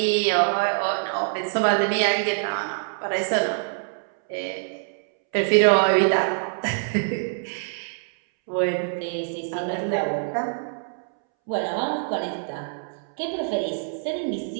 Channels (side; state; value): left; silent; 62 dB below the other